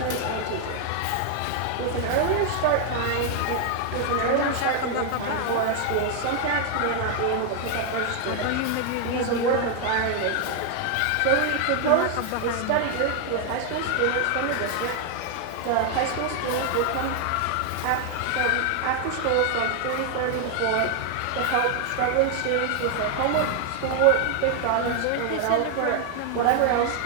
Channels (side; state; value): both; different; correlation 0.00